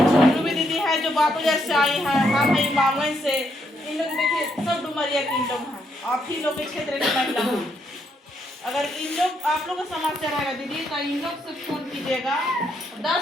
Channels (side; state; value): both; normal; correlation 0.76